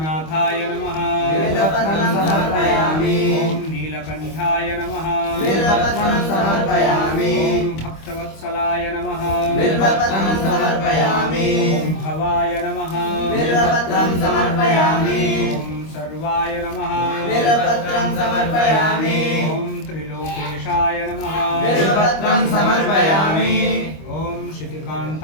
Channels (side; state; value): right; late; 25 ms